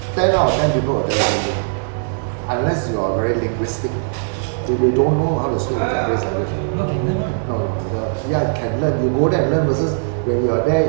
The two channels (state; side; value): silent; left; digital silence